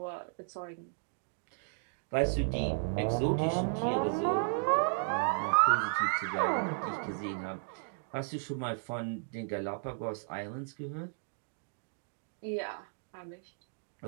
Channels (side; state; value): left; silent; digital silence